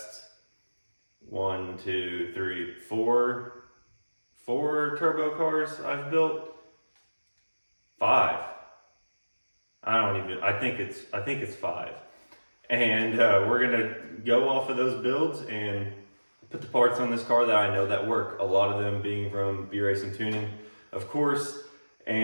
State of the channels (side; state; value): both; inverted; correlation -1.00